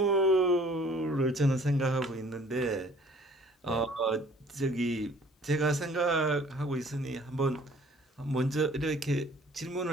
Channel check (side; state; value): both; normal; correlation 0.54